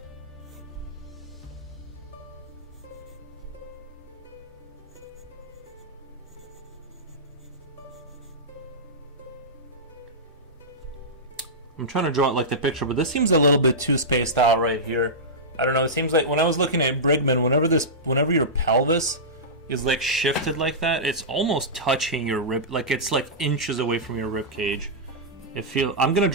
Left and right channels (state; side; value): normal; both; correlation -0.14